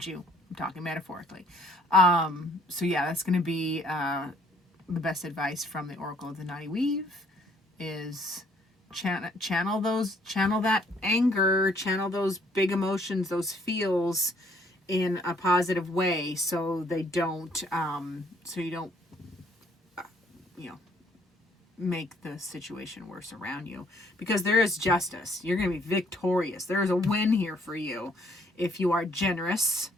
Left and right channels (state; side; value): normal; both; correlation 0.63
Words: you. I'm talking metaphorically. So yeah, that's going to be the best advice from the Oracle of the Knotty Weave is channel that anger, channel those big emotions, those feels in a positive way, so you don't make the situation worse around you, because there is justice. You're going to be victorious. There is a win here for you if you are generous.